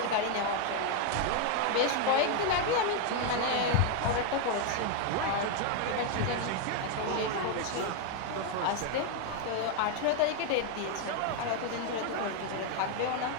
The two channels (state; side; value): different; both; correlation 0.01